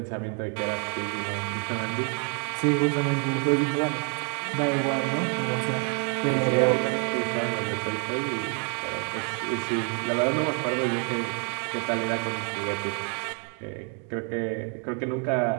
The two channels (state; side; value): quieter; left; 38.2 dB